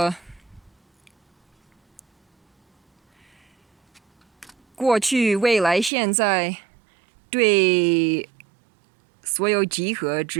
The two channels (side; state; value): left; drops out; at 5.9 s